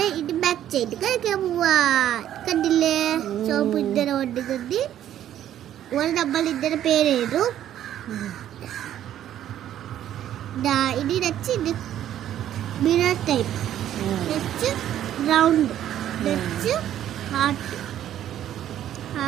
ഇത് ബാക്ക് സൈഡ് കഴിക്കാൻ പോവാ. കണ്ടില്ലേ? സോപ്പ് ഇങ്ങനെ കൊണ്ടുകൊണ്ട് നമ്മൾ ഇതിന്റെ പേരെഴുതും. ഇനി വെച്ച് ഇത് മിറർ ടൈപ്പ്, വെച്ച് റൗണ്ട്, വെച്ച് ഹാർട്ട്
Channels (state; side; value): quieter; left; 11.4 dB